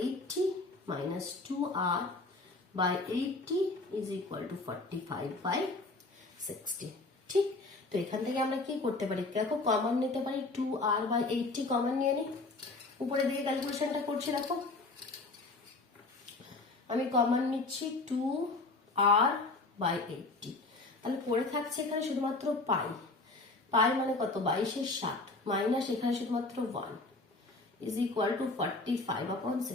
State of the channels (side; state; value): right; quieter; 3.3 dB